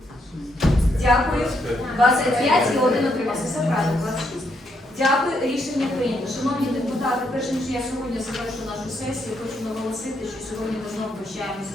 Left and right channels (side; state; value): both; normal; correlation 0.76